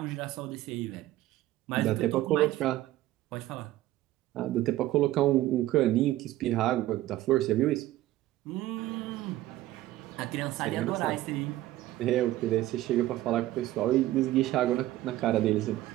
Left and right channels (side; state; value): left; quieter; 15.4 dB